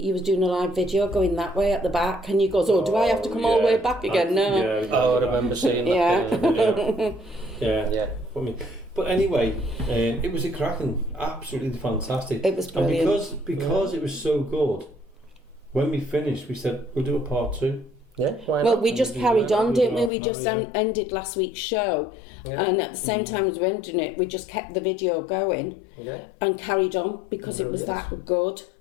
You was doing a live video going that way at the back, and you goes, "Oh, do I have to come all the way back again?" No. Yeah, Oh, I remember seeing that. Yeah. Yeah. Yeah. But anyway, it was a cracking, absolutely fantastic. It was brilliant. And because it was so good, when we finished, we said we'll do a part 2. Yeah. Why Well, not? we just carried on, didn't we? We just ended last week's show, Yeah. and at the same time as we ended it, we just kept the video going Yeah. and carried on because it was Brilliant. that good.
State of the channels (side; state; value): right; drops out; at 20.1 s